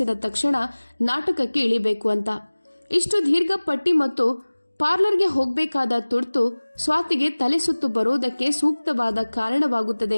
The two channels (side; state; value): both; inverted; correlation -1.00